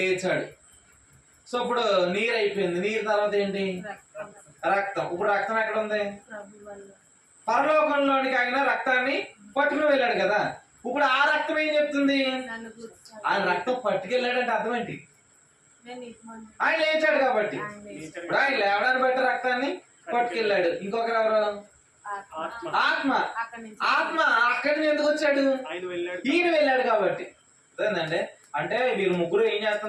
సో ఇప్పుడు నీరు అయిపోయింది. నీరు తర్వాత ఏంటి? రక్తం. ఇప్పుడు రక్తం ఎక్కడ ఉంది? పరలోకంలోనికి ఆయన రక్తాన్ని పట్టుకుని వెళ్ళాడు కదా. ఇప్పుడు ఆ రక్తం ఏం చెప్తుంది? ఆయన రక్తం పట్టుకెళ్ళాడంటే అర్థం ఏంటి? ఆయన లేచాడు కాబట్టి. ఇప్పుడు ఆయన లేవడాన్ని బట్టి రక్తాన్ని పట్టుకెళ్ళాడు. ఇంకొకరు ఎవరు? ఆత్మ. ఆత్మ అక్కడి నుంచి ఎందుకు వచ్చాడు? ఈయన వెళ్ళాడు కాబట్టి. అదేనండి, అంటే వీరు 3 ఏం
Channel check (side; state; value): both; identical; correlation 1.00